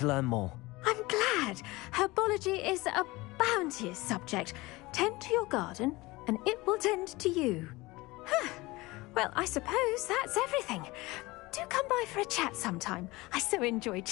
learn more. I'm glad. Herbology is a bounteous subject. Tend to your garden, and it will tend to you. Well, I suppose that's everything. Do come by for a chat sometime. I so enjoy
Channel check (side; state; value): right; quieter; 21.5 dB